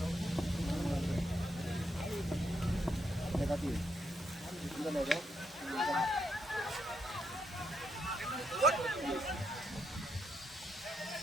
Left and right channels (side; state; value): both; normal; correlation 0.78